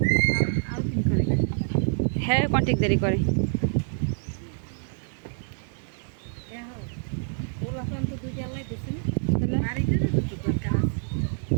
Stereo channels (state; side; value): silent; left; digital silence